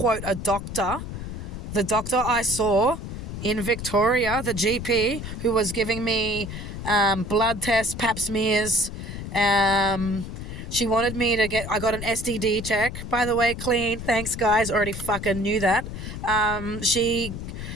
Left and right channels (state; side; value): noise; left; rumble, 8 dB below the sound